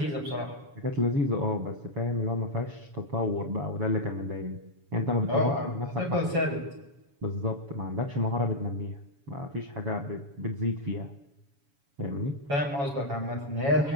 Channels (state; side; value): late; left; 7.1 ms